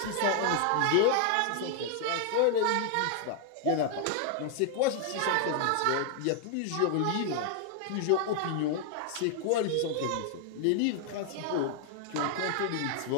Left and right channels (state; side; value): different; both; correlation 0.00